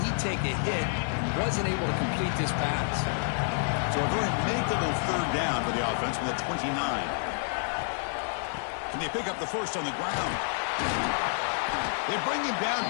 take a hit. Wasn't able to complete this pass. So a very makeable 3rd down for the offense with a 29. Can they pick up the 1st on the ground? They bring him down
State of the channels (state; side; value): silent; right; 59 dB below the other